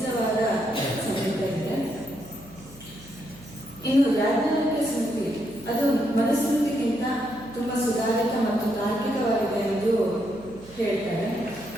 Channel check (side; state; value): right; noise; hum, 21 dB below the sound